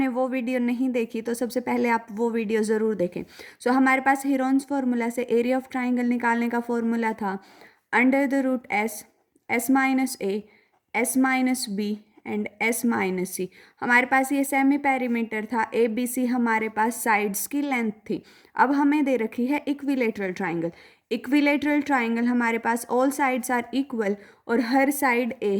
वो वीडियो नहीं देखी तो सबसे पहले आप वो वीडियो ज़रूर देखें। हमारे पास हिरॉन्स फार्मूला से एरिया ऑफ ट्राइंगल निकालने का फॉर्मूला था under the root S minus A, S minus B and S minus C. हमारे पास ये सेमी पेरीमीटर था, ए बी सी हमारे पास साइड्स की लेंथ थी। अब हमें दे रखी है इक्विलेटरल ट्राइंगल। इक्विलेटरल ट्राइंगल हमारे पास ऑल साइड्स आर इक्वल और हर साइड ए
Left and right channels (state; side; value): identical; both; correlation 1.00